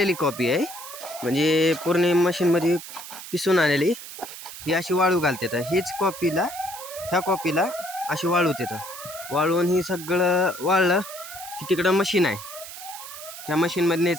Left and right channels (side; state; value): right; noise; hiss, 12 dB below the sound